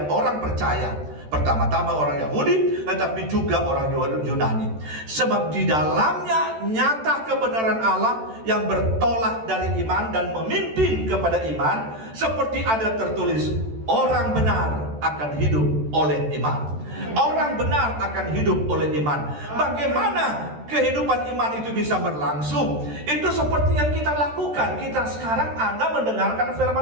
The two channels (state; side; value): late; left; 13 ms